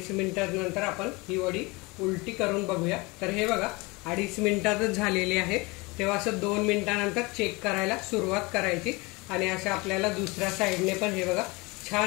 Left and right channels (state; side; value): quieter; right; 25.3 dB